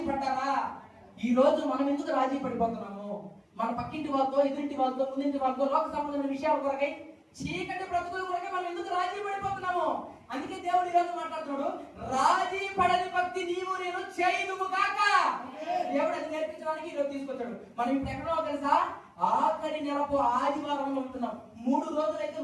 పడ్డారా? ఈ రోజు మనం ఎందుకు రాజీ పడిపోతున్నాము? మన పక్కింటి వాళ్ళతో, ఎదురింటి వాళ్ళతో, ముందింటి వాళ్ళతో లోక సంబంధమైన విషయాల కొరకై, చీకటి బ్రతుకుల కొరకై మనం ఎందుకు రాజీ పడిపోతున్నాము? అందుకే దేవుడు ఈరోజు మాట్లాడుతున్నాడు, రాజీ పడని భక్తి నీవు నేను చేయదుము కాక. దేవుడు అది నేర్పించడానికి ఈరోజు తీసుకొచ్చాడు. మనం ఇప్పుడు ఎక్కడో తెలుసా, ఆఖరి నెలకు ఆదివారంలో ఉంటున్నాం. 3 రోజులైతే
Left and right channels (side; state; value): both; identical; correlation 1.00